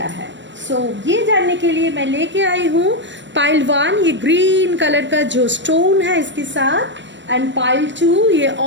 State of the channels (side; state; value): left; late; 0.53 ms